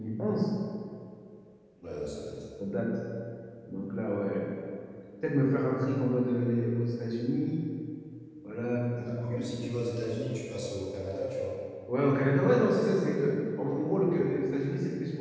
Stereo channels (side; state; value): both; identical; correlation 1.00